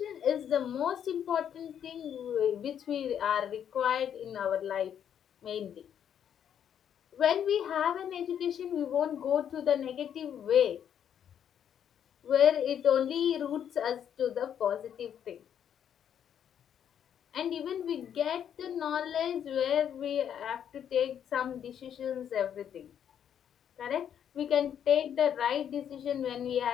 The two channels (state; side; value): quieter; right; 9.1 dB